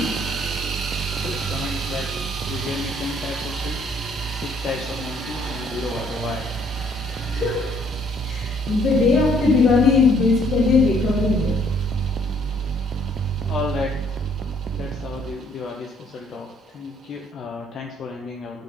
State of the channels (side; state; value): both; normal; correlation 0.64